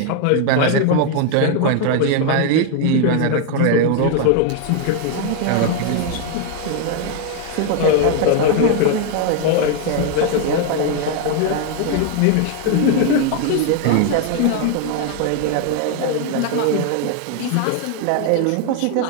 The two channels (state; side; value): different; both; correlation 0.01